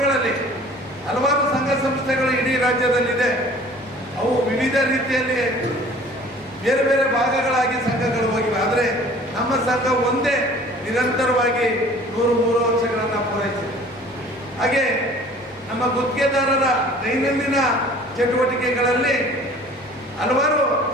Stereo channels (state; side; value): normal; both; correlation 0.49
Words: ಹಲವಾರು ಸಂಘ ಸಂಸ್ಥೆಗಳು ಇಡೀ ರಾಜ್ಯದಲ್ಲಿದೆ. ಅವು ವಿವಿಧ ರೀತಿಯಲ್ಲಿ ಬೇರೆ ಬೇರೆ ಭಾಗಗಳಾಗಿ ಸಂಘಗಳು ಹೋಗಿವೆ. ಆದರೆ ನಮ್ಮ ಸಂಘ ಒಂದೇ ನಿರಂತರವಾಗಿ 103 ವರ್ಷಗಳನ್ನು ಪೂರೈಸಿದೆ. ಹಾಗೆ ನಮ್ಮ ಗುತ್ತಿಗೆದಾರರ ದೈನಂದಿನ ಚಟುವಟಿಕೆಗಳಲ್ಲಿ ಹಲವಾರು